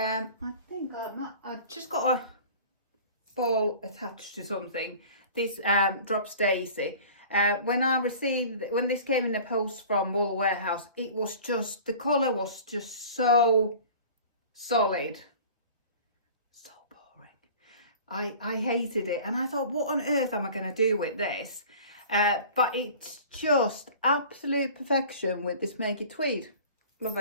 think I just got a ball attached to something. This Drops Daisy. When this came in the post from Wool Warehouse, it was just, the colour was just so solid, so boring. I hated it, and I thought, what on earth am I going to do with this? But it's just absolute perfection with this Make It Tweed. Love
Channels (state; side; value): inverted; both; correlation -0.43